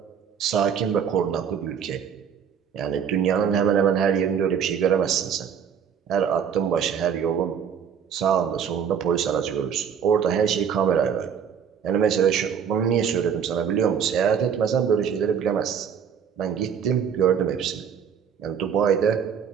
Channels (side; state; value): left; quieter; 7.6 dB